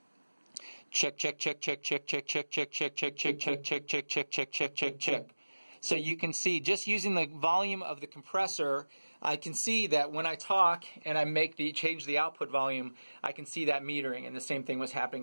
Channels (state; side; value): inverted; both; correlation -1.00